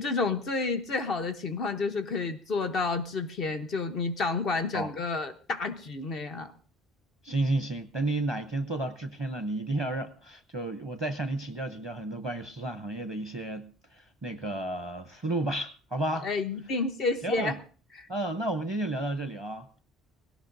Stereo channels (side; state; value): both; normal; correlation 0.45